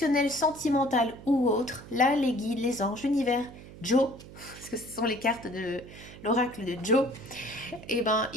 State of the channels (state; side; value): noise; right; hum, 17 dB below the sound